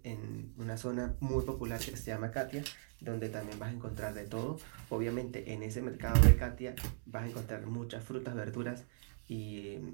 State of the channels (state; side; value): silent; left; digital silence